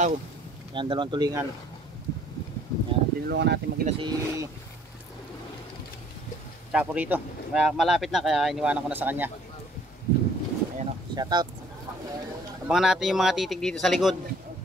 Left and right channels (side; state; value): both; normal; correlation 0.58